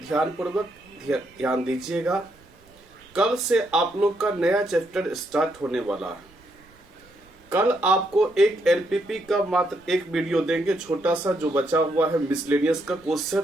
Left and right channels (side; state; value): right; noise; rumble, 29 dB below the sound